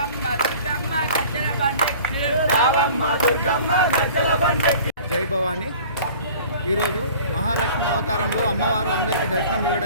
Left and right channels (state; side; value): inverted; both; correlation -0.46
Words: దుర్గమ్మ గజ్జల బండెక్కి రావమ్మ దుర్గమ్మ గజ్జల బండెక్కి. జై భవాని. ఈరోజు మహాలక్ష్మి అవతారంలో అమ్మవారు అందరికీ దర్శనం